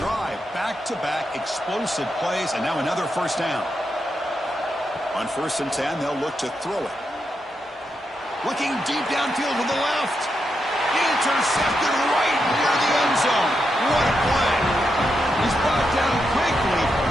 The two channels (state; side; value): normal; both; correlation 0.84